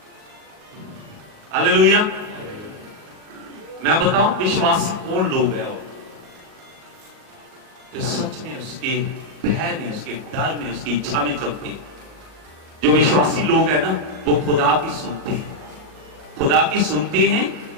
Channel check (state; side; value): late; left; 38 ms